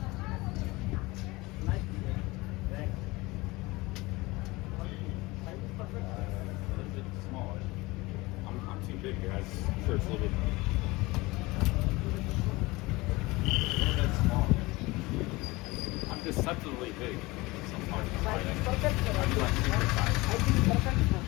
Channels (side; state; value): right; quieter; 22.1 dB